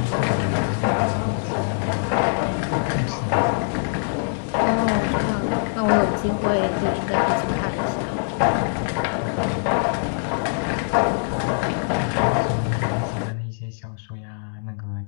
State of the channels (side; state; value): right; silent; digital silence